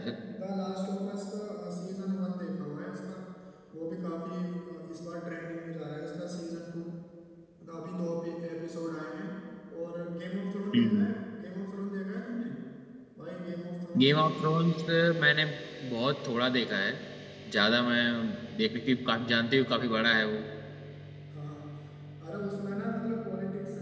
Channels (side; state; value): both; identical; correlation 1.00